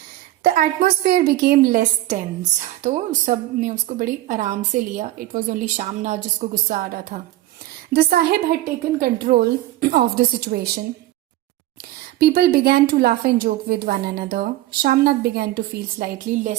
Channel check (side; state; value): left; quieter; 15.5 dB